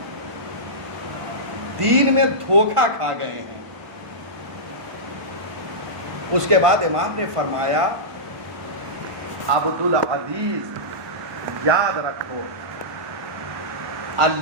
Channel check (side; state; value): left; late; 1.5 ms